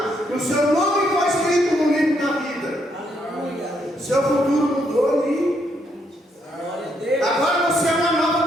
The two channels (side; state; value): both; normal; correlation 0.75